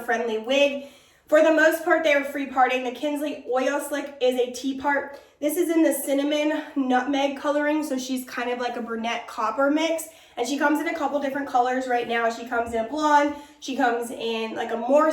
wig. For the most part, they are free parting. The Kinsley Oil Slick is a tea part. This is in the cinnamon nutmeg coloring, so she's kind of like a brunette copper mix. And she comes in a couple different colors right now. She comes in a blonde, she comes in like a more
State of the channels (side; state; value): both; identical; correlation 1.00